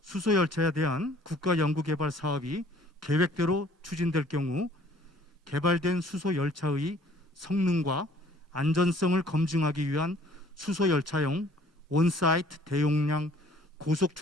수소열차에 대한 국가연구개발 사업이 계획대로 추진될 경우 개발된 수소열차의 성능과 안전성을 검증하기 위한 수소열차용 온사이트 대용량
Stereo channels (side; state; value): both; normal; correlation 0.56